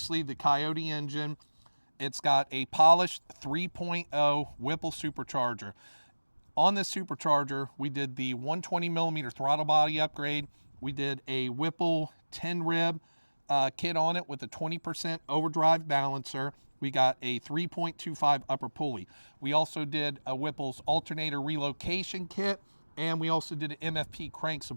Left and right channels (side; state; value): both; inverted; correlation -1.00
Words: the Coyote engine. It's got a polished 3.0 Whipple supercharger. On this supercharger, we did the 120 millimeter throttle body upgrade. We did a Whipple 10 rib kit on it with a 20% overdrive balancer. We got a 3.25 upper pulley. We also did a Whipple's alternator relocation kit, and we also did an MFP crank